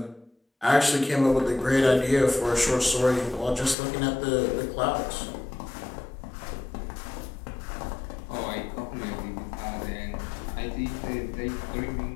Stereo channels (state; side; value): drops out; right; at 3.8 s